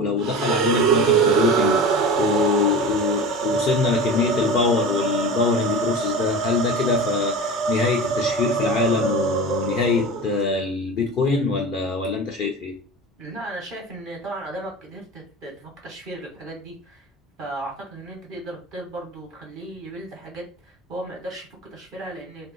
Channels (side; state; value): both; normal; correlation 0.32